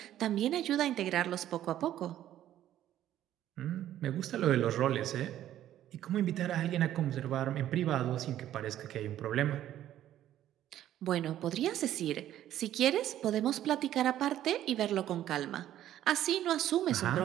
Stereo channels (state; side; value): quieter; left; 12.2 dB